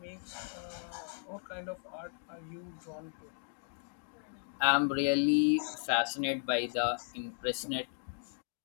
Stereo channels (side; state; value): right; silent; digital silence